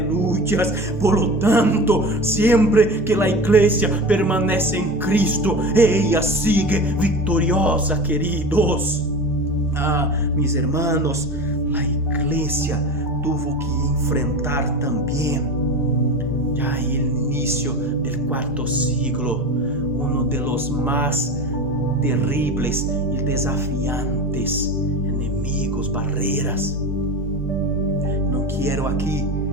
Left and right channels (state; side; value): normal; both; correlation 0.29